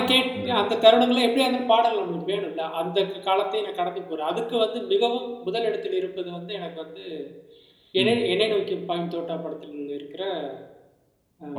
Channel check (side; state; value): both; identical; correlation 1.00